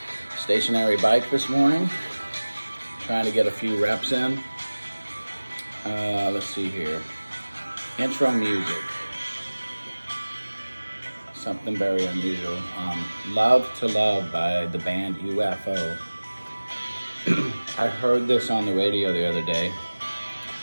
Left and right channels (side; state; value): both; inverted; correlation -1.00